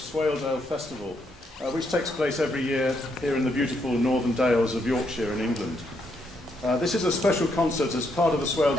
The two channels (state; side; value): normal; both; correlation 0.76